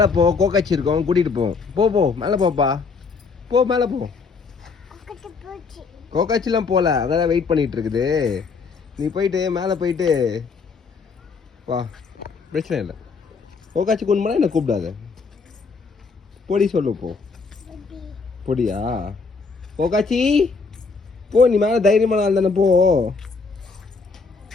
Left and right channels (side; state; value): right; quieter; 4.7 dB